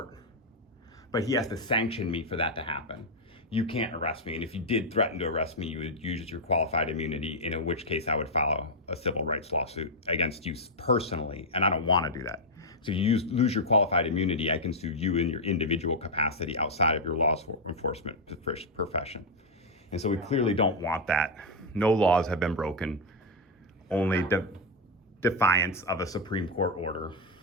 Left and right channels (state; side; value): normal; both; correlation 0.00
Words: but he has to sanction me for that to happen. You can't arrest me, and if you did threaten to arrest me, you would use your qualified immunity, in which case I would file a civil rights lawsuit against you personally, and I don't want to do that. So if you lose your qualified immunity, I can sue you in your individual capacity outside of your law enforcement profession. And so we clearly don't want that. No laws have been broken, only defiance of a Supreme Court order.